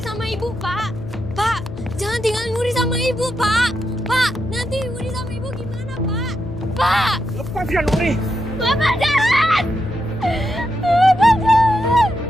sama ibu, Pak. Pak, jangan tinggalin Wuri sama ibu, Pak. Pak, nanti Wuri sama ibu gimana, Pak? Pak! Lepaskan Wuri! Bapak jalan! Bapak jalan!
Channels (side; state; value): left; noise; hum, 13 dB below the sound